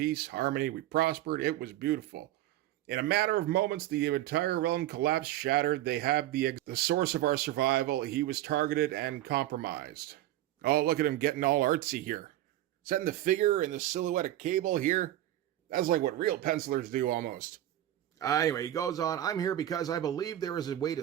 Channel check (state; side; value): quieter; left; 13.8 dB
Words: harmony. We prospered. It was beautiful. In a matter of moments, the entire realm collapsed, shattered. They have the source of our survival. He was targeted and compromised. Oh, look at him getting all artsy here. Setting the figure and the silhouette of Cable here. That's like what real pencilers do almost. Anyway, he goes on, I'm here because I believe there is a way